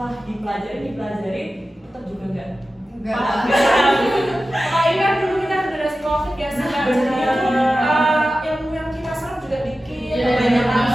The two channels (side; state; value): both; normal; correlation 0.94